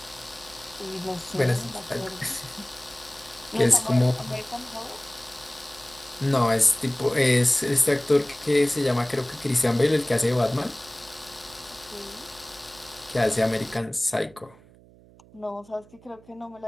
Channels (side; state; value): right; noise; hum, 25 dB below the sound